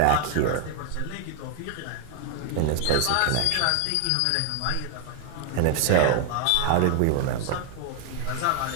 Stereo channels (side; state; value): both; different; correlation 0.00